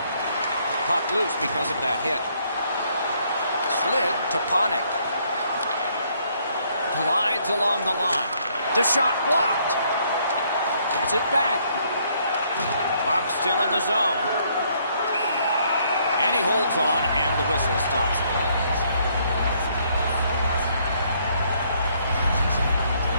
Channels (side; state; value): both; inverted; correlation -0.68